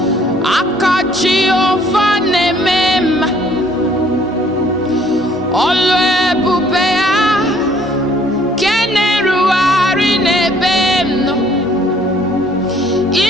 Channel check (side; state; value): both; normal; correlation 0.60